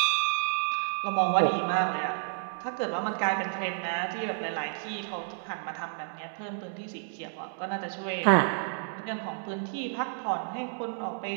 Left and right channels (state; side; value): silent; left; digital silence